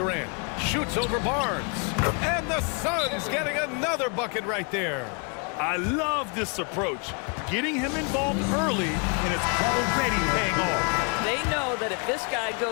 Shoots over Barnes. And the Suns getting another bucket right there. I love this approach. Getting him involved early, and it's already paying off. They know that if this guy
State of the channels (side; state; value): right; quieter; 35.6 dB